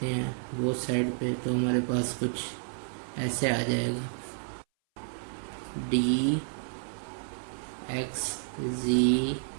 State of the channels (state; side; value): silent; left; 57 dB below the other